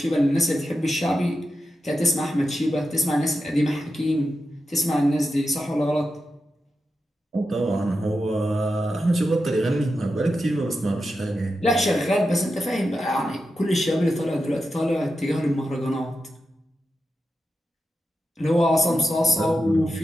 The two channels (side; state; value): both; normal; correlation 0.89